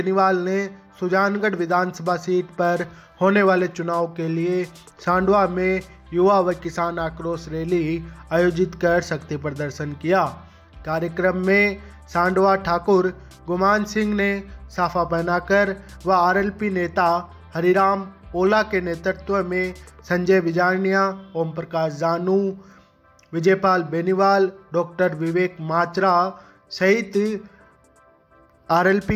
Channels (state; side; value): identical; both; correlation 1.00